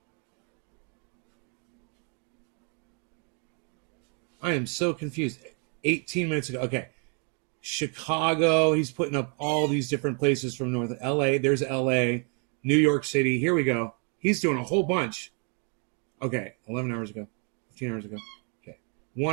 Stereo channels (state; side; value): quieter; left; 38.6 dB